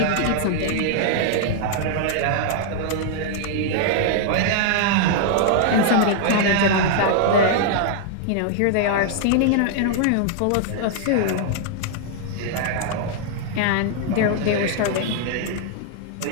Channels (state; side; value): different; both; correlation -0.01